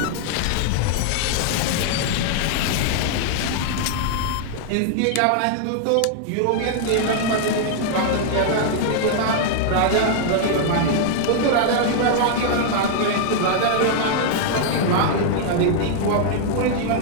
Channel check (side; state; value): both; different; correlation -0.01